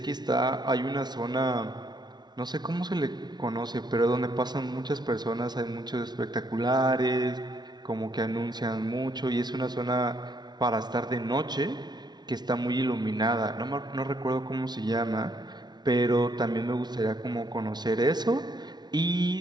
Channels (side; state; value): left; late; 0.20 ms